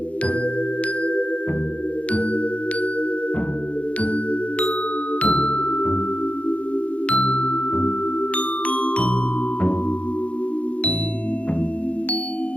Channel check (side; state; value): right; late; 0.064 ms